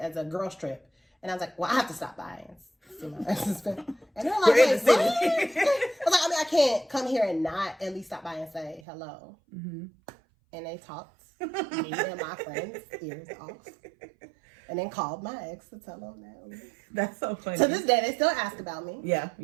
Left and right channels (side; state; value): left; drops out; at 8.8 s